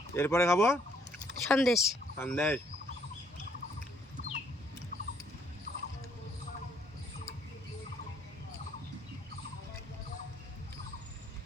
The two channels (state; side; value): normal; both; correlation 0.67